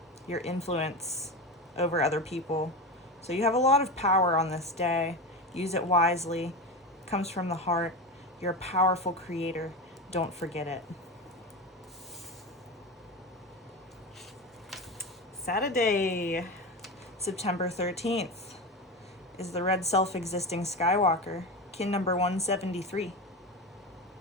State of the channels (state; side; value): normal; both; correlation 0.22